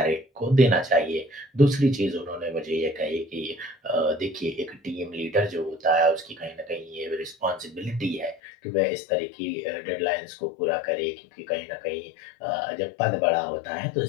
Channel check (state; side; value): drops out; right; at 8.4 s